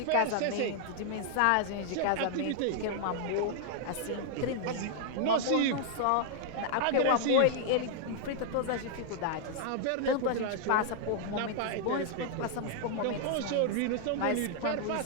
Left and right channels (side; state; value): both; different; correlation -0.01